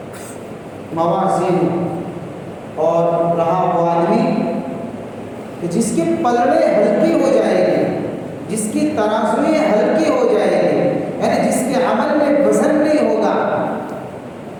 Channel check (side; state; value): both; identical; correlation 1.00